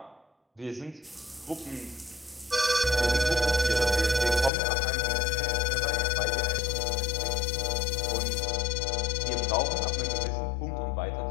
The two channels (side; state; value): right; drops out; at 4.5 s